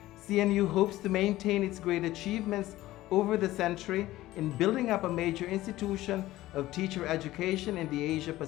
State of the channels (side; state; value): right; quieter; 16.2 dB